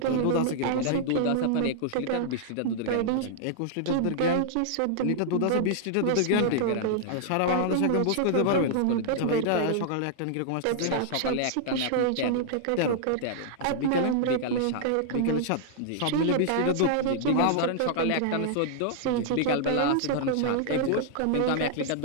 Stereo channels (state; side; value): different; both; correlation -0.01